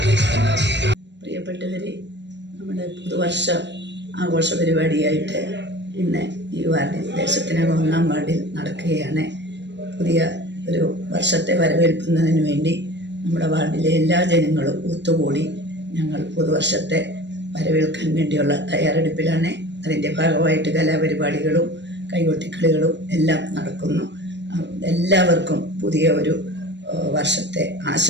പ്രിയപ്പെട്ടവരെ, നമ്മുടെ പുതുവർഷ ആഘോഷ പരിപാടിയായിട്ട് ഇന്ന് ഈ വാർഡിൽ ദേശത്തിനകം 1-ാം വാർഡിൽ നടക്കുകയാണ്. പുതിയ ഒരു വർഷത്തെ വരവേൽക്കുന്നതിന് വേണ്ടി നമ്മുടെ വാർഡിലെ എല്ലാ ജനങ്ങളും ഒത്തുകൂടി ഞങ്ങൾ പുതുവർഷത്തെ വരവേൽക്കാൻ വേണ്ടിയുള്ള തയ്യാറെടുപ്പിലാണ്. അതിൻ്റെ ഭാഗമായിട്ട് കലാപരിപാടികളും കൈകൊട്ടിക്കളികളും എല്ലാം നടക്കുന്നു. എല്ലാവർക്കും പുതിയ ഒരു വർഷത്തെ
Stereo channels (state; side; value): late; left; 0.51 ms